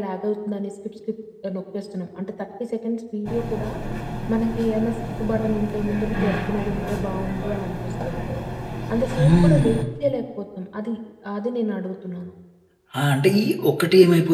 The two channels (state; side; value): identical; both; correlation 1.00